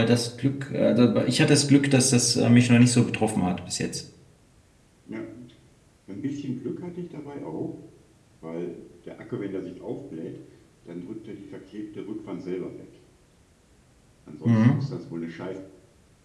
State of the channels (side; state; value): both; identical; correlation 1.00